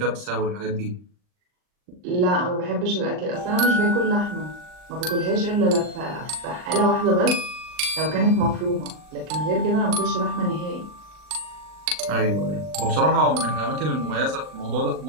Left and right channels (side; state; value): left; late; 39 ms